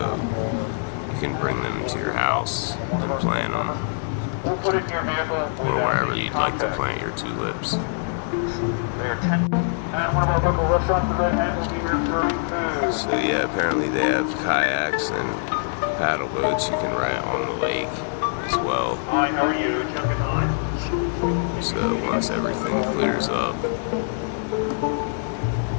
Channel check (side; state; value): right; silent; digital silence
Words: you can bring them to your house and plant them. Or wherever you'd like to plant your tulips. So yeah, apparently they have kayaks and paddle boats you can ride on the lake as well. Hi, how are you? So once everything clears up,